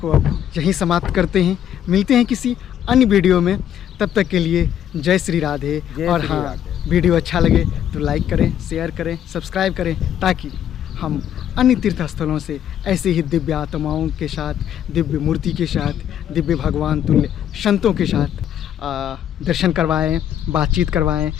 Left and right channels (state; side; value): quieter; right; 10.2 dB